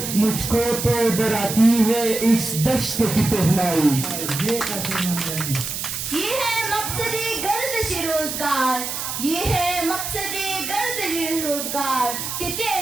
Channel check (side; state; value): right; noise; hiss, 4 dB below the sound